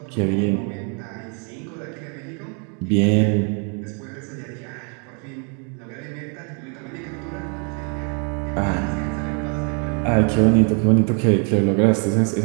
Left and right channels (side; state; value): left; quieter; 37.8 dB